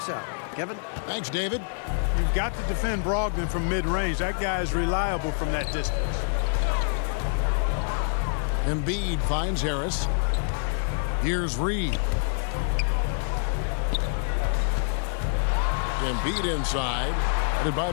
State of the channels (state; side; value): silent; right; digital silence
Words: out. Kevin? Thanks, David. You've got to defend Brogdon from mid-range. That guy is reliable from that distance. Embiid finds Harris. Here's Reed. Embiid inside. Headed by